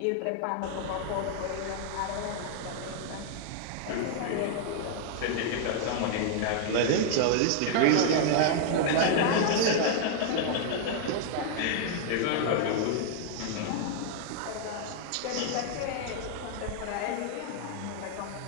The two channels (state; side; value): different; both; correlation 0.00